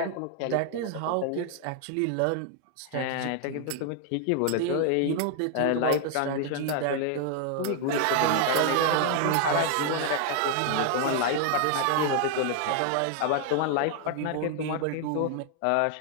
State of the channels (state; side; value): different; both; correlation 0.00